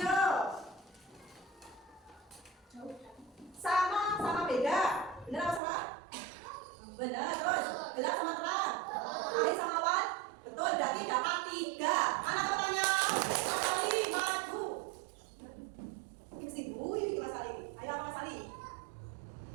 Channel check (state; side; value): drops out; left; at 5.6 s